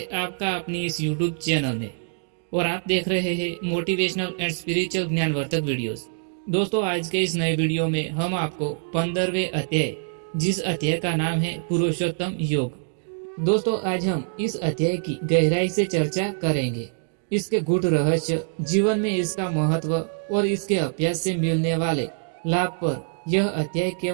आपका अपनी इस YouTube चैनल में। और आप देख रहे हैं मोटिवेशनल एंड स्पिरिचुअल ज्ञानवर्धक वीडियोस। दोस्तों, आज के इस नए वीडियो में हम आपको 15वें अध्याय, जिस अध्याय का नाम है पुरुषोत्तम योग। दोस्तों, आज हम इस अध्याय की गहराई से चर्चा करेंगे। इसके गूढ़ रहस्य, जीवन में इसका महत्व और इसके अभ्यास से मिलने वाले लाभ पर यह अध्याय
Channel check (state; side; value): silent; left; digital silence